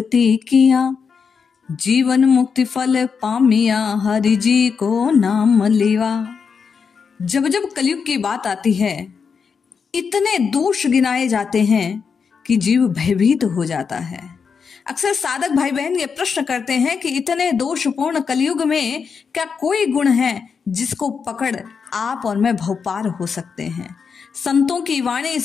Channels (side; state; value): right; quieter; 5.9 dB